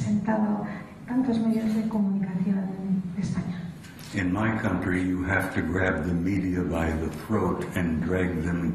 tantos medios de comunicación de España. In my country, you have to grab the media by the throat and drag them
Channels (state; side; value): identical; both; correlation 1.00